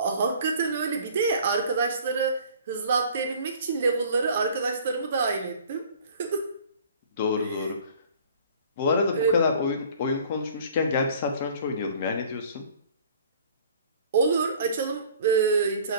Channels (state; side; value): inverted; both; correlation -0.50